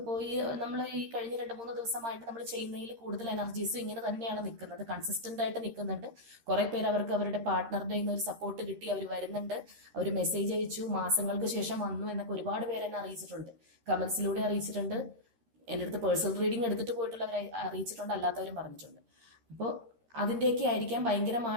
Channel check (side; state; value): left; late; 13 ms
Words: പോയി നമ്മൾ ഈ കഴിഞ്ഞ 2-3 ദിവസമായിട്ട് നമ്മൾ ചെയ്യുന്നതിൽ കൂടുതൽ എനർജീസും ഇങ്ങനെ തന്നെയാണ് നിൽക്കുന്നത്, കൺസിസ്റ്റന്റ് ആയിട്ട് നിൽക്കുന്നുണ്ട്. കുറെ പേര് അവർക്ക് അവരുടെ പാർട്ട്ണറുടെ ഒരു സപ്പോർട്ട് കിട്ടി അവർ വരുന്നുണ്ട്, അവർ മെസ്സേജ് അയച്ചു, മാസങ്ങൾക്ക് ശേഷം വന്നു എന്നൊക്കെ ഒരുപാട് പേര് എന്നെ അറിയിച്ചിട്ടുണ്ട്, കമന്റ്സിലൂടെ അറിയിച്ചിട്ടുണ്ട്, എൻ്റെ അടുത്ത് പേഴ്സണൽ റീഡിംഗ് എടുത്തിട്ട് പോയിട്ടുള്ളവരെ അറിയിച്ചിട്ടുണ്ട്, അല്ലാത്തവരും പറഞ്ഞിട്ടുണ്ട്. അപ്പോൾ അതിൻ്റെയൊക്കെ ആയിരിക്കാം